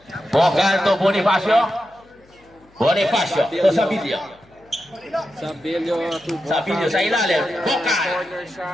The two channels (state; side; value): noise; left; hum, 30 dB below the sound